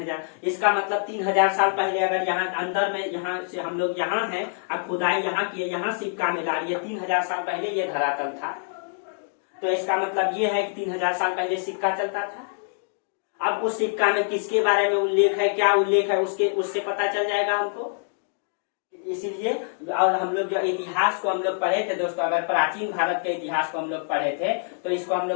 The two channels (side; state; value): right; silent; digital silence